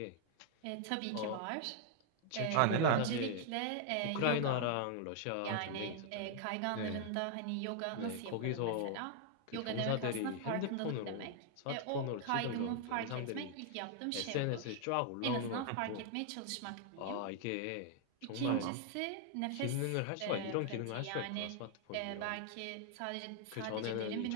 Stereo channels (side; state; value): both; different; correlation 0.00